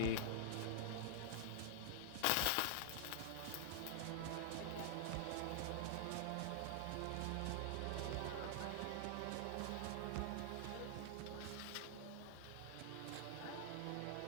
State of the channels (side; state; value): both; different; correlation -0.01